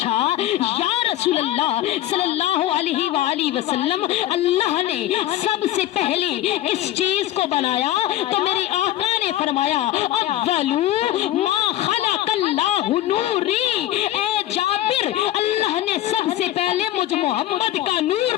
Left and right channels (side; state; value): right; quieter; 13.7 dB